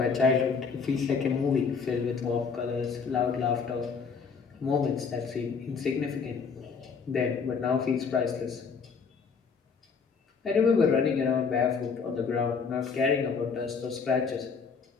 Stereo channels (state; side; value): quieter; right; 5.5 dB